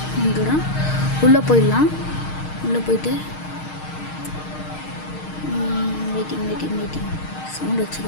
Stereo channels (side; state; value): right; late; 6.5 ms